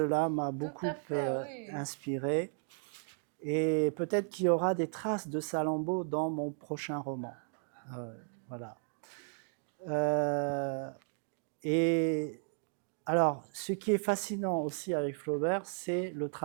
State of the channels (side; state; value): left; silent; 55 dB below the other